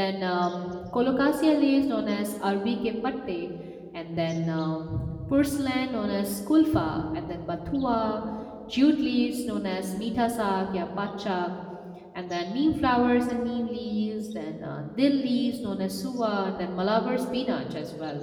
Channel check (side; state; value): both; identical; correlation 1.00